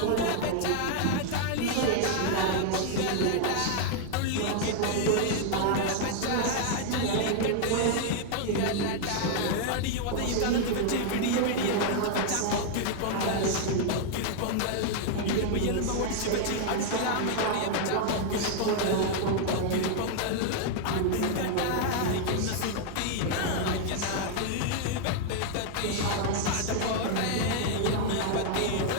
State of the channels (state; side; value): different; both; correlation 0.00